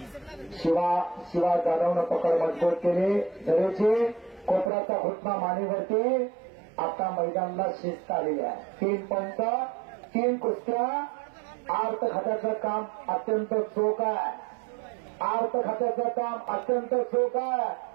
शिवा जाधवनं पकड मजबूत केली धरेची कोपऱ्याचा घुटना मानेवरती. आता मैदानाला शिस्त आलेली आहे. 3 पंच 3 कुस्त्या. आर्त खात्याचं काम अत्यंत चोख आहे. आर्त खात्याचं काम अत्यंत चोख आहे.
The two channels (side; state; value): left; drops out; at 4.7 s